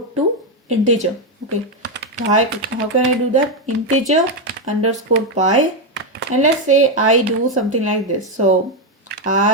to integer. Okay, how can I do that? Integer underscore pi, and let's say I do something like this. So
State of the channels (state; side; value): normal; both; correlation 0.05